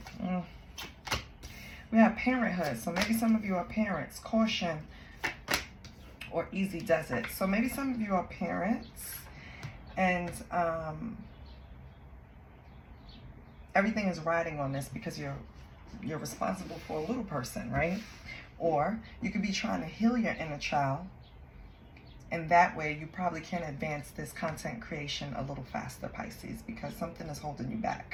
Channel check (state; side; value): identical; both; correlation 1.00